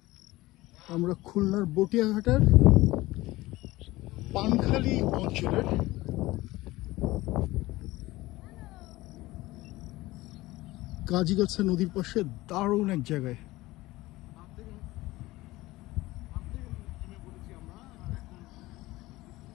আমরা খুলনার বটিয়াঘাটার পানখালি অঞ্চলের কাজিগাছা নদীর পাশে দারুণ এক জায়গায়।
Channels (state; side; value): quieter; right; 18.8 dB